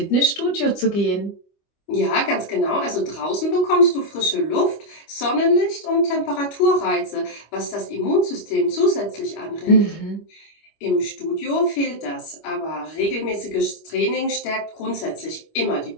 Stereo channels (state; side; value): late; right; 25 ms